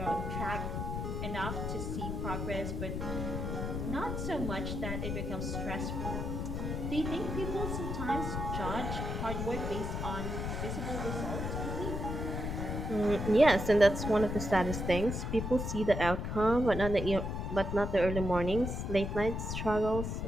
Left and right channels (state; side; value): noise; left; rumble, 3 dB below the sound